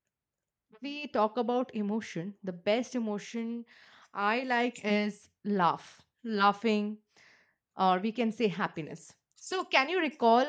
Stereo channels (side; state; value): both; identical; correlation 1.00